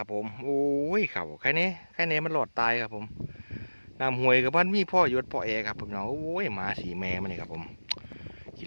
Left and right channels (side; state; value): both; inverted; correlation -1.00